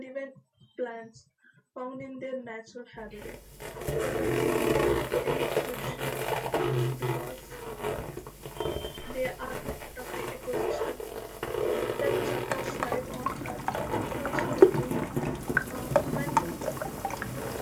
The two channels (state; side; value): identical; both; correlation 1.00